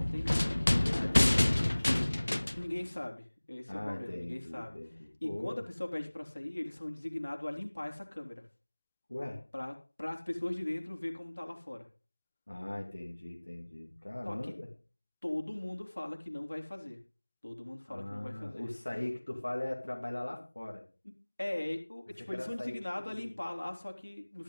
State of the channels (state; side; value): inverted; both; correlation -1.00